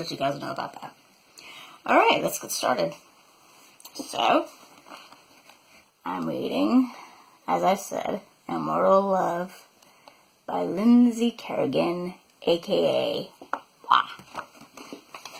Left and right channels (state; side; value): identical; both; correlation 1.00